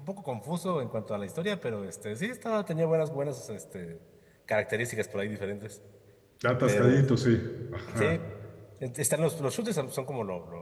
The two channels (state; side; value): identical; both; correlation 1.00